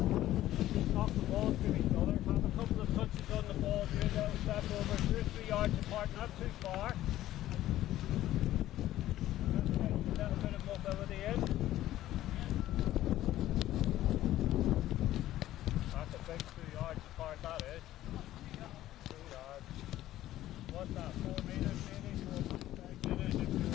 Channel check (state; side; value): quieter; right; 14.1 dB